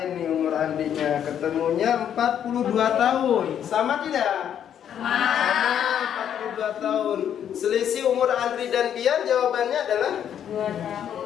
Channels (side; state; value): right; quieter; 9.4 dB